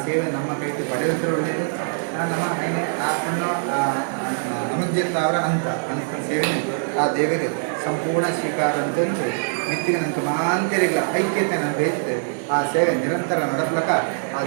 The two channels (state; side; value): silent; left; digital silence